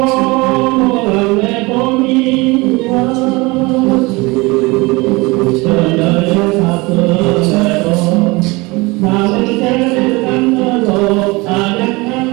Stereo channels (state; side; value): quieter; left; 24.1 dB